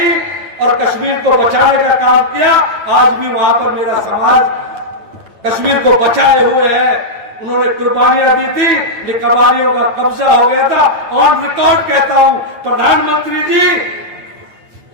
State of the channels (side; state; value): left; late; 9.0 ms